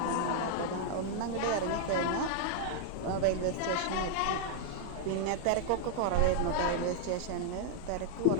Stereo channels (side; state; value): both; different; correlation -0.01